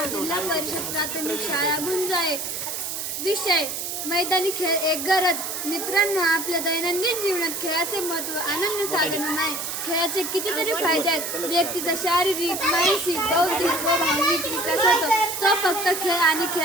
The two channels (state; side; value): noise; right; hiss, 4 dB below the sound